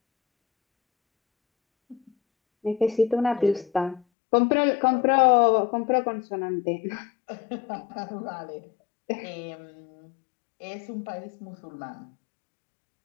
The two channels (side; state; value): right; drops out; at 4.0 s